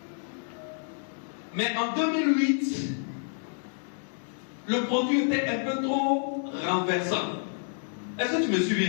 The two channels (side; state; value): right; silent; digital silence